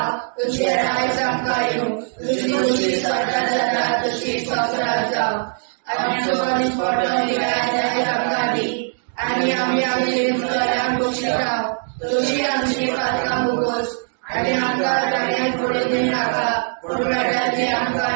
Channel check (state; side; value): silent; left; digital silence